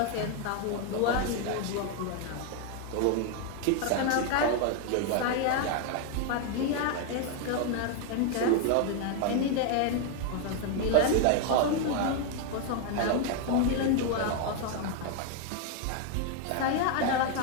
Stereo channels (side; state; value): both; different; correlation 0.01